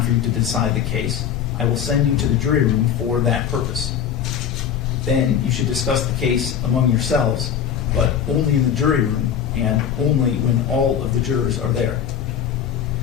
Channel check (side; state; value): right; quieter; 8.7 dB